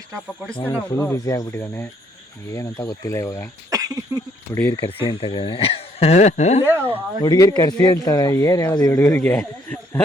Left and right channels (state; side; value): normal; both; correlation 0.67